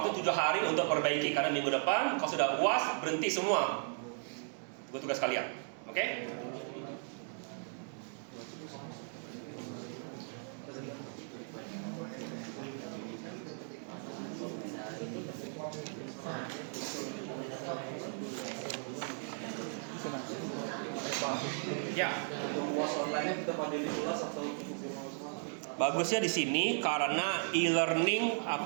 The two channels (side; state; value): left; silent; 54 dB below the other